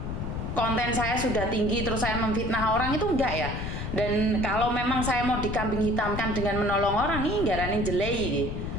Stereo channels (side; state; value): left; noise; rumble, 4 dB below the sound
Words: konten saya sudah tinggi terus saya memfitnah orang, itu enggak ya. Dan kalau memang saya mau dikambing hitamkan dengan menolong orang, ini ngaranin jelei gitu.